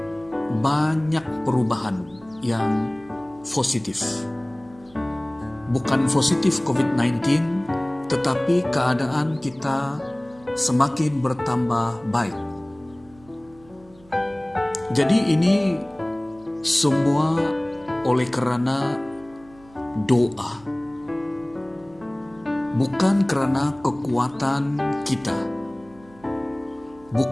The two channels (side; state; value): right; noise; hum, 26 dB below the sound